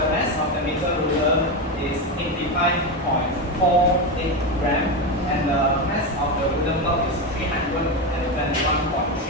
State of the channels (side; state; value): both; normal; correlation 0.14